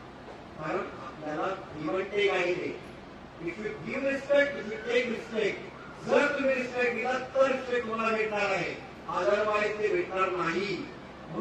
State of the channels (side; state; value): both; identical; correlation 1.00